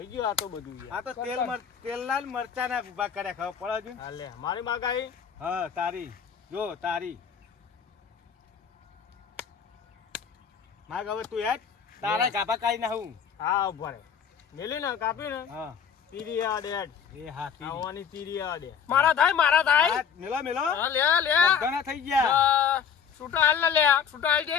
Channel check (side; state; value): right; quieter; 7.3 dB